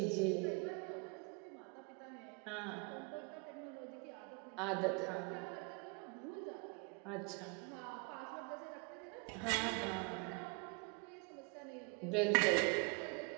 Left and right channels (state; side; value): quieter; left; 33.3 dB